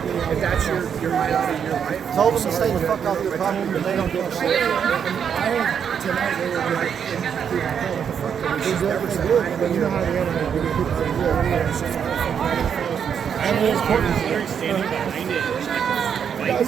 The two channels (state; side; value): quieter; left; 7.7 dB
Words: If that's your highlight of your life, Tell them to stay the fuck off your property, but they don't give a shit. I heard tonight they were like, what the fuck? She's never said hi to me. You know how they are. I know there's Courtney's here standing behind it. Guys,